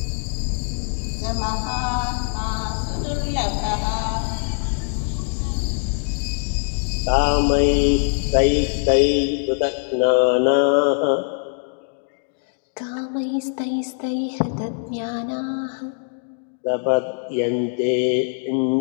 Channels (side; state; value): right; silent; digital silence